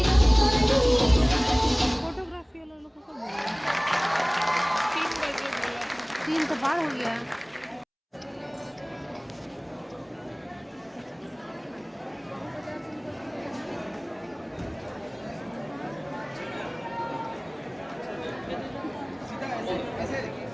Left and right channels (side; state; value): both; identical; correlation 1.00